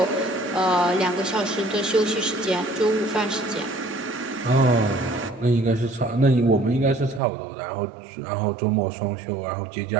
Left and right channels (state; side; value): drops out; left; at 7.2 s